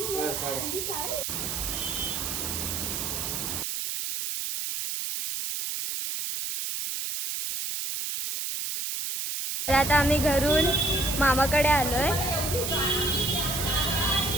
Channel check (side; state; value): right; noise; hiss, 3 dB below the sound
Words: आता आम्ही घरून मामाकडे आलोय.